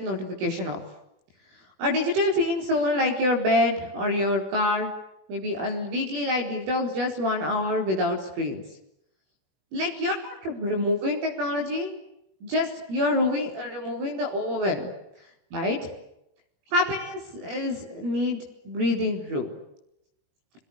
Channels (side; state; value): left; late; 21 ms